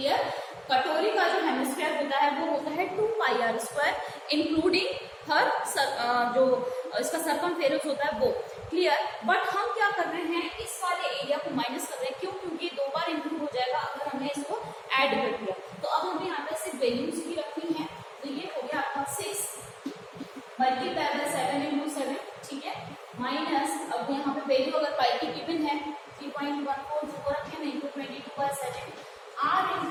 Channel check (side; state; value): both; identical; correlation 1.00